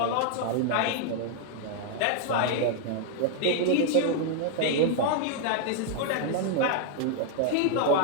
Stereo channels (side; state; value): both; different; correlation 0.00